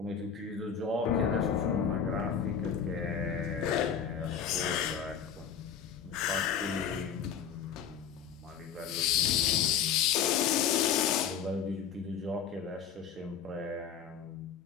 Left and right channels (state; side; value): quieter; right; 7.7 dB